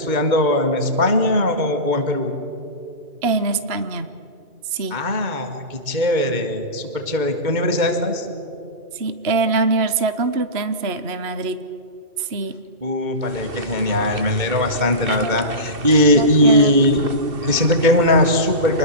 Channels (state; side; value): late; left; 2.2 ms